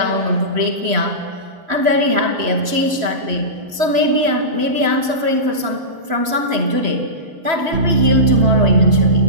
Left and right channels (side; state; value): left; late; 3.0 ms